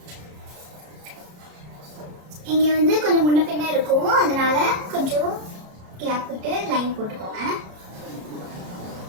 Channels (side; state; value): left; late; 33 ms